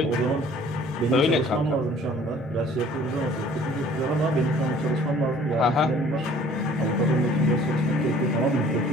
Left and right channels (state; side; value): normal; both; correlation 0.53